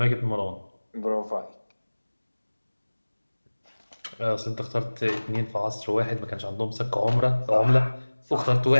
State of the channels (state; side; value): inverted; both; correlation -1.00